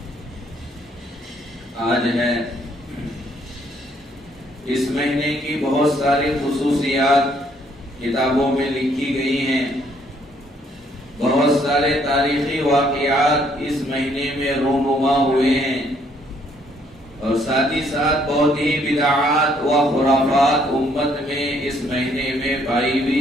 آج ہے۔ اس مہینے کی بہت ساری خصوصیات کتابوں میں لکھی گئی ہیں۔ بہت سارے تاریخی واقعات اس مہینے میں رونما ہوئے ہیں، اور ساتھ ہی ساتھ بہت ہی بدعات و خرافات امت میں اس مہینے میں پائی بھی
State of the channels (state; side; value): normal; both; correlation 0.67